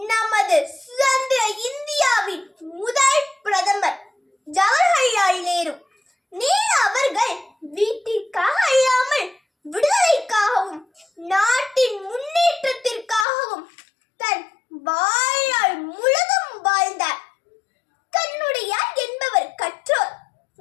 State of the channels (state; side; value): drops out; right; at 13.2 s